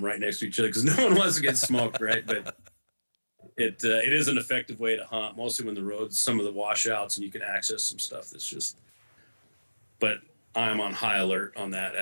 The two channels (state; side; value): inverted; both; correlation -1.00